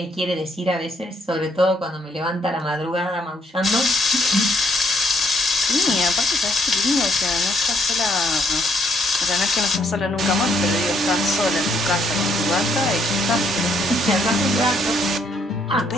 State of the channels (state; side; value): normal; both; correlation 0.70